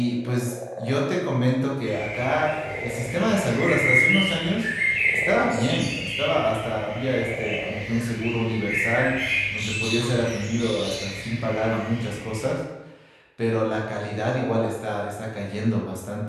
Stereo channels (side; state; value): both; identical; correlation 1.00